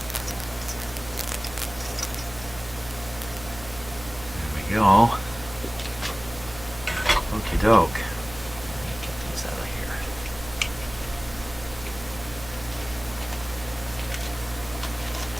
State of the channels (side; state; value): right; noise; hum, 14 dB below the sound